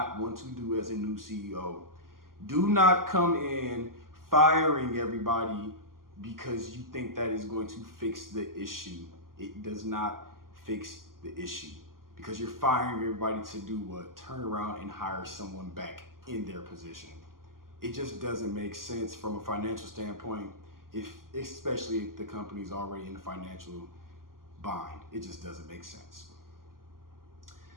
want to do as a new CEO. Do not come in firing everybody because you think that is going to fix the issue. It does not fix the issue because you're firing everybody to do what? Turn around and hire someone back in their position. It just doesn't make sense from a financial standpoint, especially if the company's already in the financial bind. It just doesn't make sense.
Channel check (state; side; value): late; left; 0.91 ms